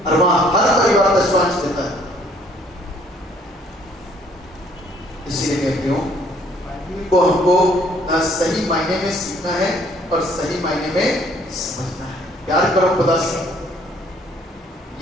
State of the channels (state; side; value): normal; both; correlation 0.61